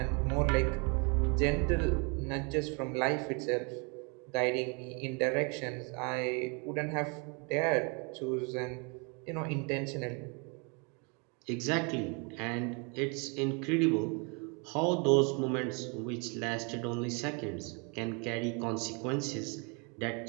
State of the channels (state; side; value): quieter; left; 33.6 dB